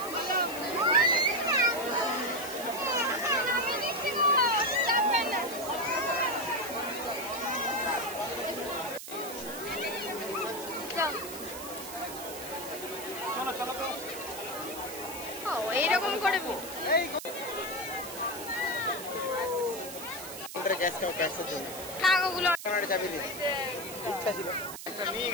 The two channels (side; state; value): right; noise; hiss, 10 dB below the sound